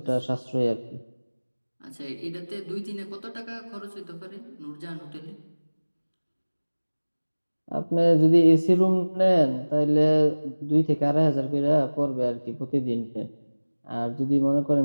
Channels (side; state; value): both; inverted; correlation -1.00